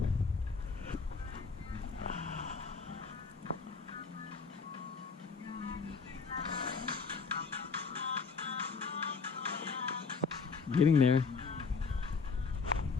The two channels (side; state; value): right; quieter; 5.0 dB